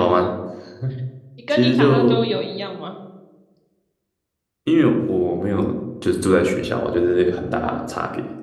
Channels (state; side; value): identical; both; correlation 1.00